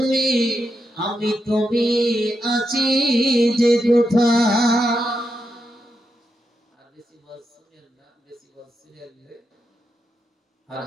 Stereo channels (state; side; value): normal; both; correlation 0.85